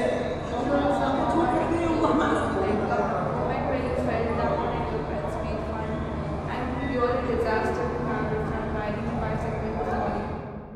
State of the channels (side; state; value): both; identical; correlation 1.00